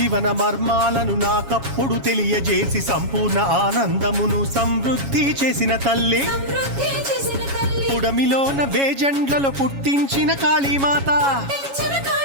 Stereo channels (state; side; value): late; left; 7.2 ms